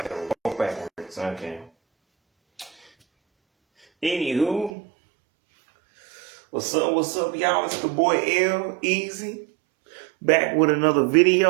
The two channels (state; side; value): drops out; left; at 4.8 s